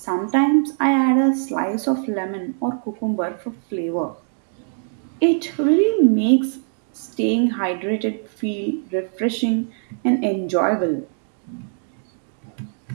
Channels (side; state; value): left; silent; digital silence